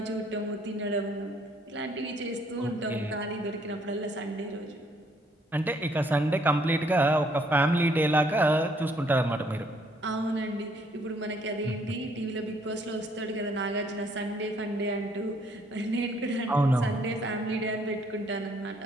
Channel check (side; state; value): both; normal; correlation 0.66